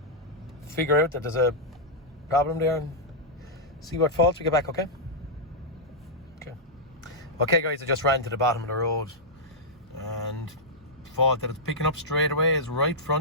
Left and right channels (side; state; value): both; normal; correlation -0.09